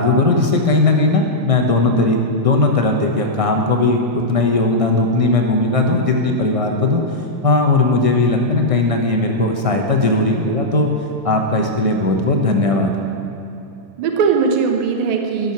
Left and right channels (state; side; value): late; left; 1.6 ms